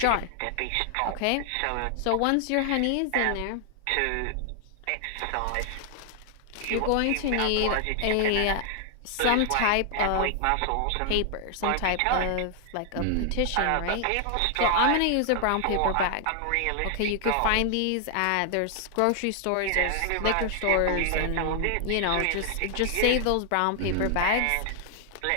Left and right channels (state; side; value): different; both; correlation 0.00